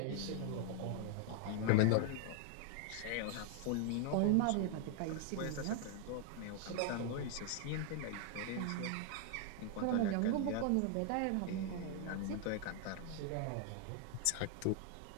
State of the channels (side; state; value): both; different; correlation 0.00